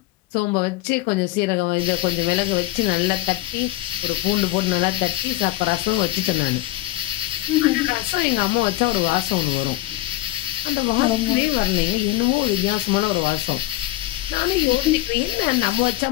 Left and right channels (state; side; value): quieter; right; 17.0 dB